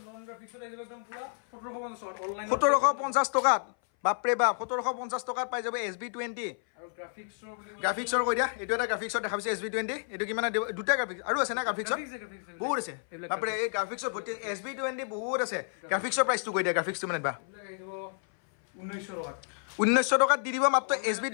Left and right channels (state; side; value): silent; right; 56 dB below the other